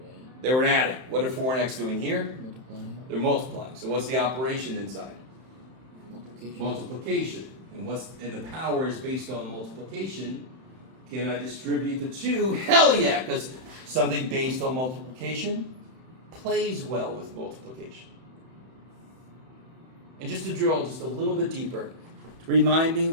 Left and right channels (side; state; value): left; late; 31 ms